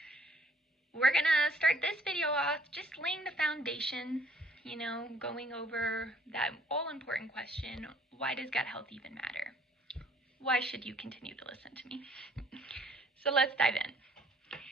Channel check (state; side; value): normal; both; correlation 0.60